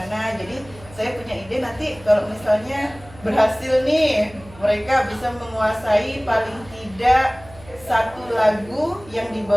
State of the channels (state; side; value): noise; right; hum, 21 dB below the sound